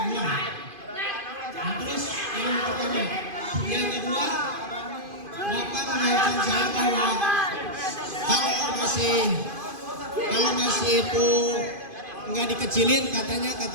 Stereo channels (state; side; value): late; left; 2.5 ms